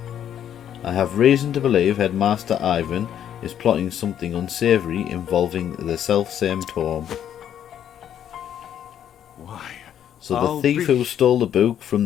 I have reason to believe Headmaster Ivan is plotting something unsavoury involving the self-same tome. Why? So the I'll thief be- who stole the book from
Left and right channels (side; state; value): right; quieter; 9.9 dB